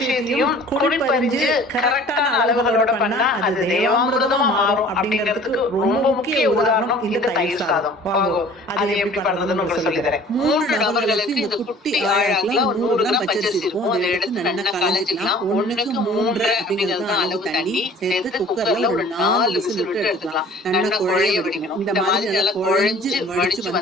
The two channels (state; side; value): normal; both; correlation 0.49